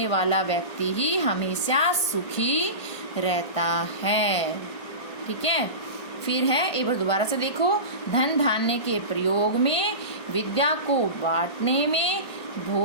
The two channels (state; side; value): late; right; 1.6 ms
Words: वाला व्यक्ति ही हमेशा सुखी रहता है। ठीक है, फिर है, एक बार दोबारा से देखो, धन धान्य के प्रयोग में, विद्या को बांटने में,